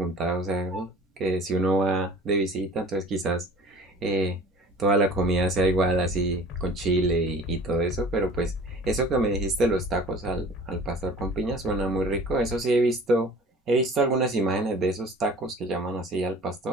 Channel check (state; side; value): normal; both; correlation 0.45